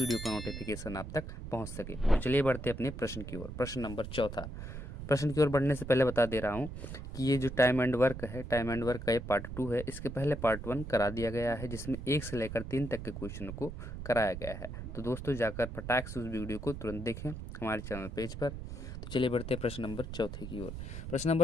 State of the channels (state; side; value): noise; right; rumble, 8 dB below the sound